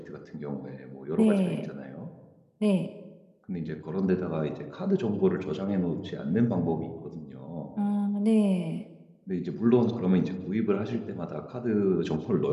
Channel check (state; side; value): identical; both; correlation 1.00